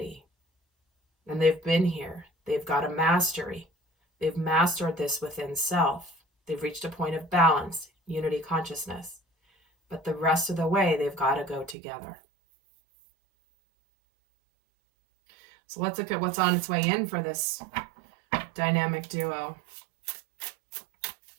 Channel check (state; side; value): drops out; left; at 11.8 s